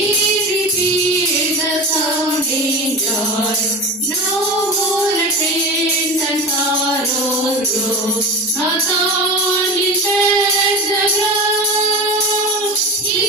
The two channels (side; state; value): both; normal; correlation 0.30